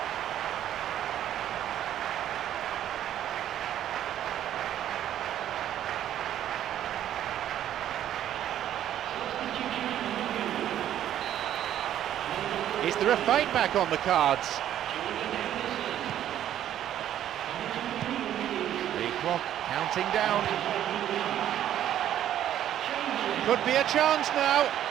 Is there a fight back on the cards? The clock counting down. Could be a chance now.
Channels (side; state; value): left; quieter; 11.3 dB